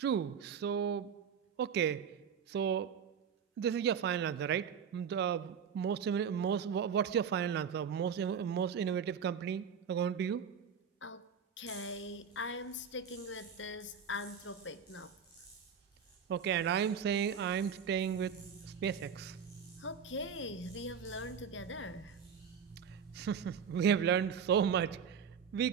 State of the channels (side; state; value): left; quieter; 7.0 dB